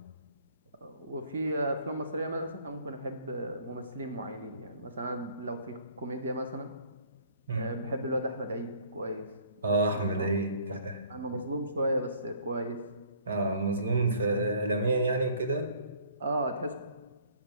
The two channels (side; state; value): both; inverted; correlation -0.57